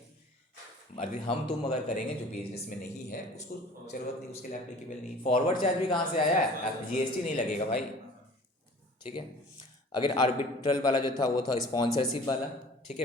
अभी हम तुम अगर करेंगे जो बिजनेस में नहीं है उसको जरूरत नहीं, उसके लिए एप्लीकेबल नहीं। फॉरवर्ड चार्ज भी कहाँ से आया है? GST नहीं लगेगा भाई, ठीक है। अगर आर्बिट्रल वाला जो था वो था स्पॉन्सरशिप वाला, ठीक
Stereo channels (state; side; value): normal; both; correlation 0.46